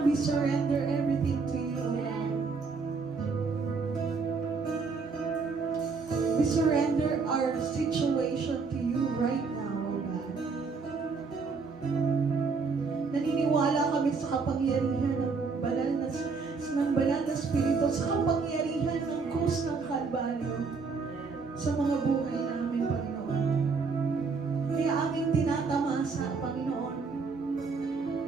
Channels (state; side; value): quieter; left; 4.7 dB